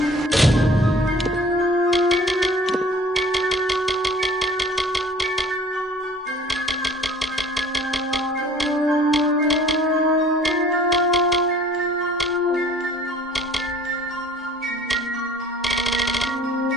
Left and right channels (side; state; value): both; normal; correlation 0.50